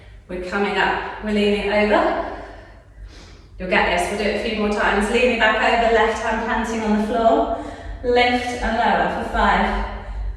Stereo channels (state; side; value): identical; both; correlation 1.00